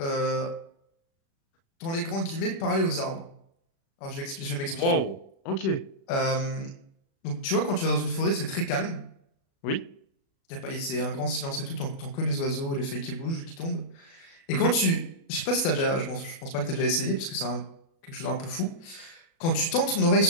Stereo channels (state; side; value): late; right; 36 ms